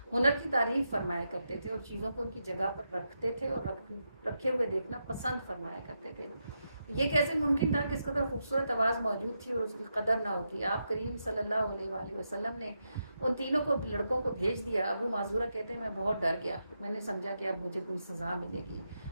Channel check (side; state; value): both; inverted; correlation -0.85